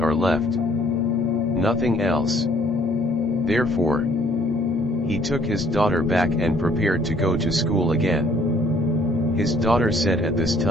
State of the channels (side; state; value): both; normal; correlation 0.62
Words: left. Nothing else. Therefore, he took his daughter back and prepared to go to school again. His daughter said at this